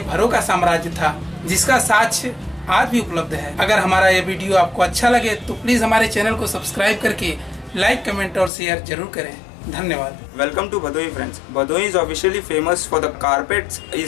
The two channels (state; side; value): drops out; right; at 8.5 s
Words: का साम्राज्य था, जिसका साक्ष्य आज भी उपलब्ध है। अगर हमारा ये वीडियो आपको अच्छा लगे तो प्लीज हमारे चैनल को सब्सक्राइब करके लाइक, कमेंट और शेयर जरूर करें। धन्यवाद। Welcome to Bhadoi friends. Bhadoi is officially famous for the carpets